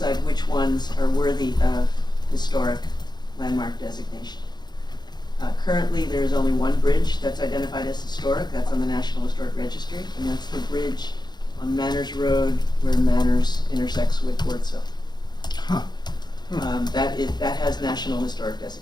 which ones are worthy of historic landmark designation. Currently, there is only one bridge that's identified as historic. That's on the National Historic Registry, and that's the bridge on Manners Road where Manners intersects with Wardsville. Huh. That has National Historic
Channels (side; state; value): right; late; 0.21 ms